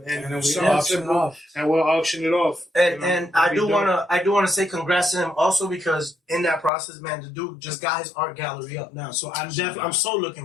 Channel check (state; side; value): drops out; right; at 6.7 s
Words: we'll auction it off. And we'll auction it off. And I do wanna say congrats to him also because in that process, man, the dude just got his art gallery up now. So I'm so